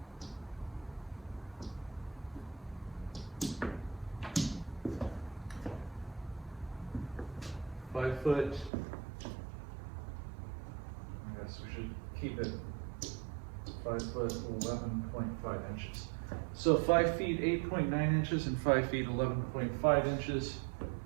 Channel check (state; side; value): drops out; left; at 8.7 s